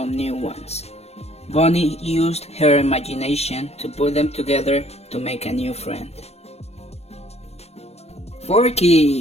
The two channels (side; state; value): right; late; 0.31 ms